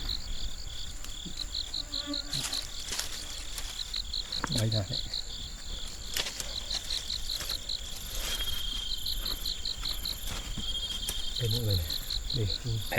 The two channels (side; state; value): both; identical; correlation 1.00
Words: Đây rồi. Đây mọi người này. Đây.